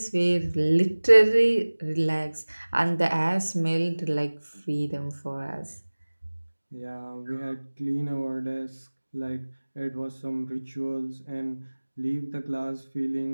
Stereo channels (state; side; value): inverted; both; correlation -1.00